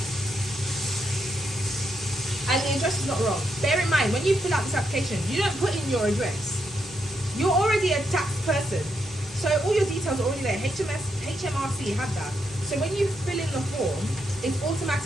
And the address is not wrong. Bear in mind, when you fill out this application, you don't put in your address. You're already a tax person, so all your details are already there. HMRC have that. So when you fill in the form, it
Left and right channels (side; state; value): both; normal; correlation 0.80